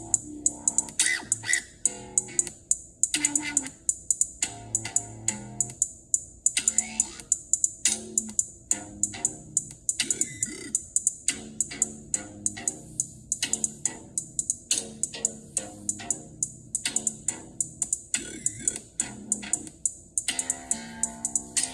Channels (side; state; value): both; identical; correlation 1.00